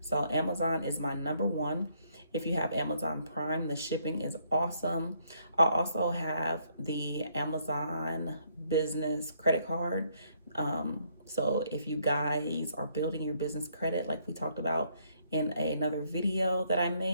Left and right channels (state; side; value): inverted; both; correlation -0.70